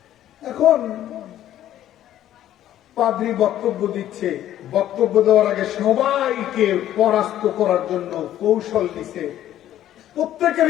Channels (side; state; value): right; quieter; 12.3 dB